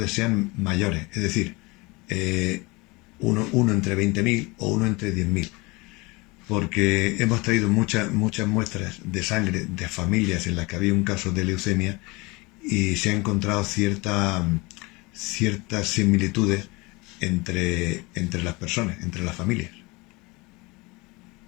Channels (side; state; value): right; quieter; 24.8 dB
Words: sean mayores, es decir, uno entre 20.000 o 1 entre 10.000, porque hemos traído muchas muestras de sangre de familias en las que había un caso de leucemia y se han encontrado ciertas similitudes entre las personas, entre las familias.